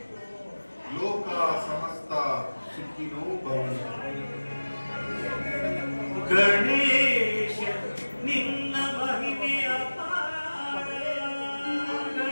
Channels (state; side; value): inverted; both; correlation -1.00